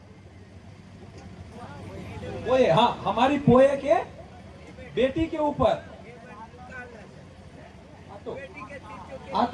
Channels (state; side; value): identical; both; correlation 1.00